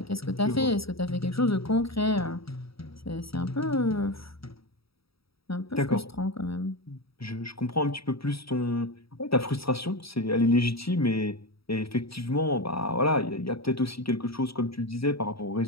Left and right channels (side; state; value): right; late; 0.76 ms